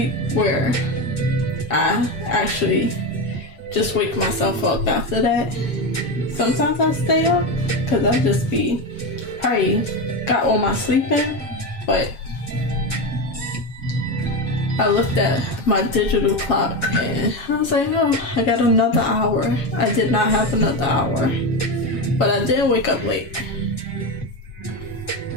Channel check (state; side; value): late; right; 7.3 ms